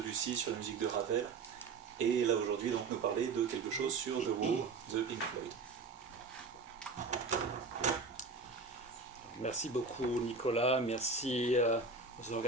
sur la musique de Ravel, et là aujourd'hui donc nous parler de quelque chose sur The Wall de Pink Floyd. Merci beaucoup Nicolas, merci aux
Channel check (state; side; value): quieter; left; 4.3 dB